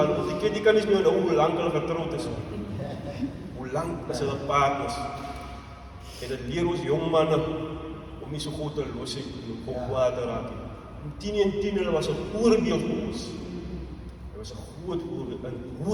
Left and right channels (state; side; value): identical; both; correlation 1.00